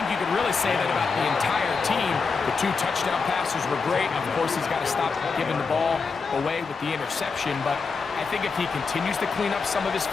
you could really say that about the entire team. The 2 touchdown passes were great. Of course, he's got to stop giving the ball away with the interception. But I think if he continues to clean up some of his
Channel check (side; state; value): right; quieter; 4.9 dB